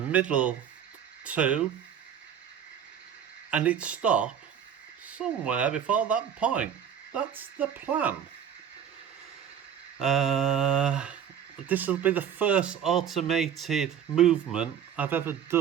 2, and it stop somewhere before that point. That's the plan. This will be the first automated movement I've ever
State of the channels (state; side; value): quieter; left; 8.7 dB